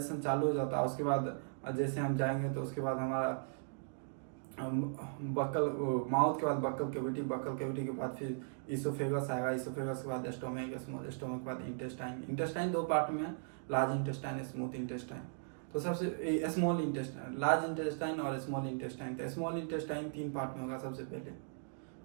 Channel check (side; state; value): left; silent; digital silence